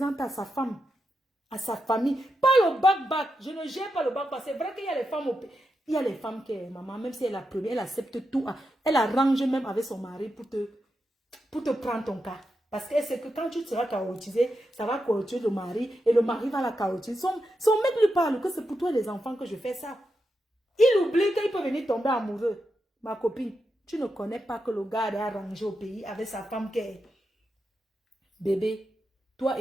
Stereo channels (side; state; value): both; normal; correlation 0.86